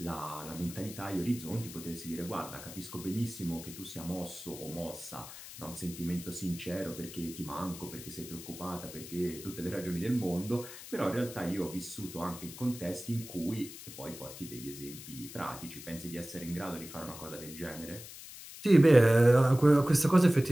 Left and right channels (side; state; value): left; noise; hiss, 14 dB below the sound